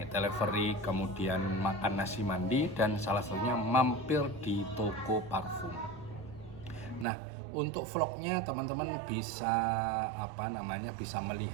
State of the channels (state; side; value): drops out; left; at 7.1 s